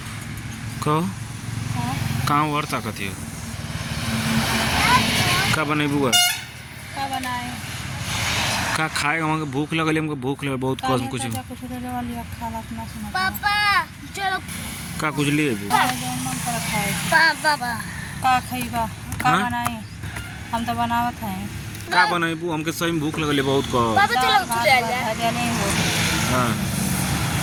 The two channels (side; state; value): both; identical; correlation 1.00